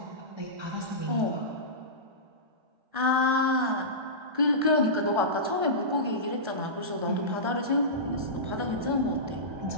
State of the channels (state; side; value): late; left; 1.3 ms